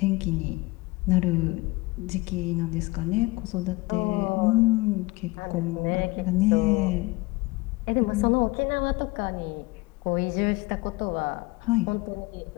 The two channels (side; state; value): right; quieter; 22.9 dB